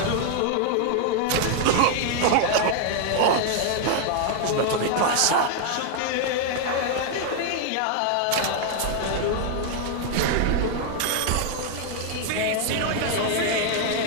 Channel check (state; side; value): different; both; correlation 0.00